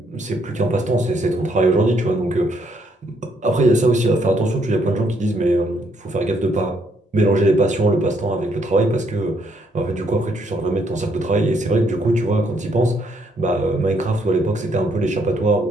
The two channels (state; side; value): normal; both; correlation 0.71